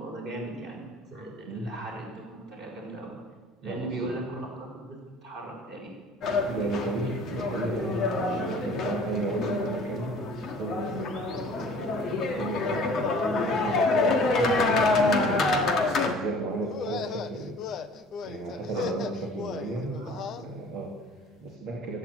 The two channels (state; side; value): normal; both; correlation 0.49